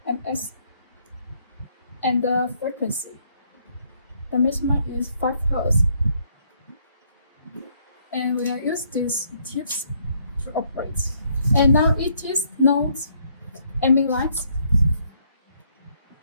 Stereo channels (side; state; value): both; inverted; correlation -0.69